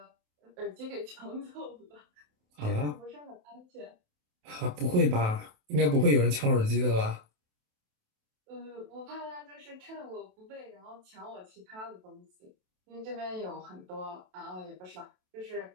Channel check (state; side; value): late; left; 27 ms